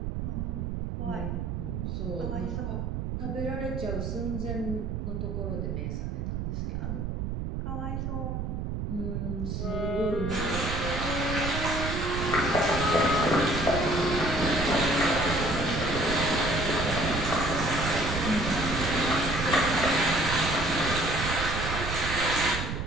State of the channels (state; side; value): noise; right; rumble, 3 dB below the sound